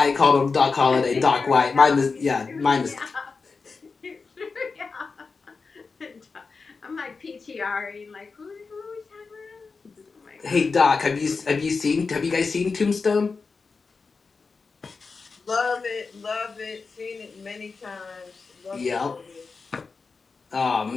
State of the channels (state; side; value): quieter; right; 4.6 dB